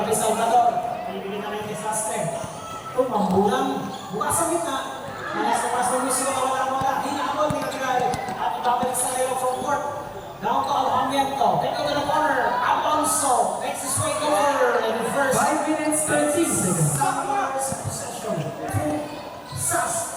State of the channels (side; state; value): both; identical; correlation 1.00